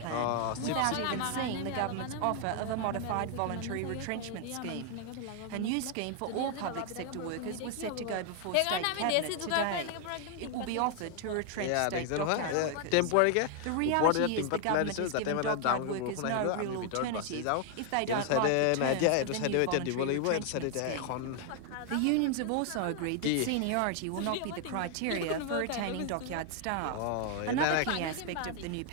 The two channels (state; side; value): different; both; correlation 0.00